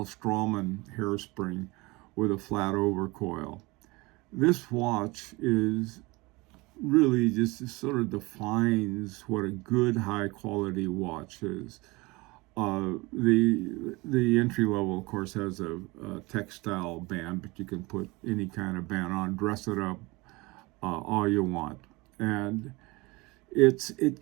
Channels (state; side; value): quieter; left; 23.8 dB